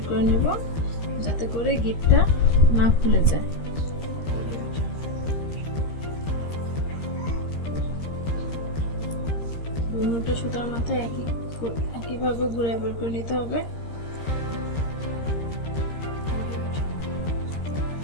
করে নেব, যাতে করে গিটটা না খুলে যায়। দুটো সুতার মাথায় একইভাবে ঘুরে বের করে নিতে হবে।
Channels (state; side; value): late; right; 13 ms